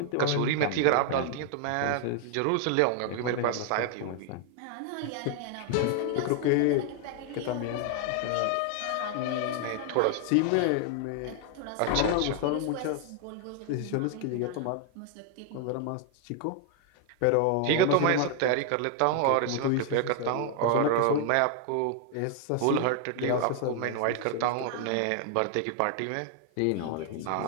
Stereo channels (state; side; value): different; both; correlation 0.00